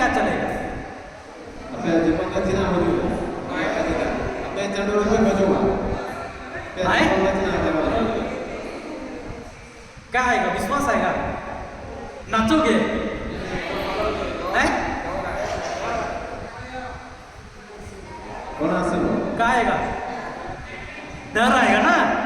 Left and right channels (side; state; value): both; identical; correlation 1.00